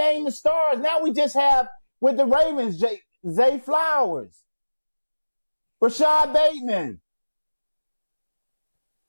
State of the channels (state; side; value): inverted; both; correlation -1.00